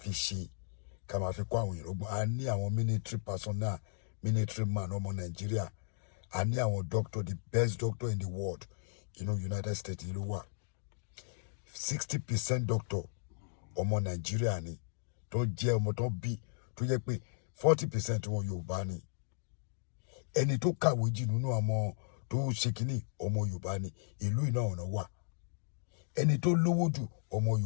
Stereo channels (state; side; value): silent; right; digital silence